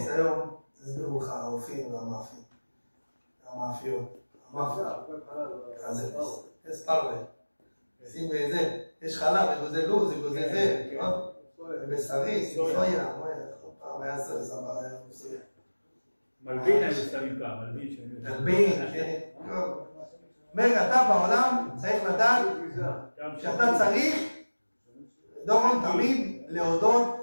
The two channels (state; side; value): inverted; both; correlation -1.00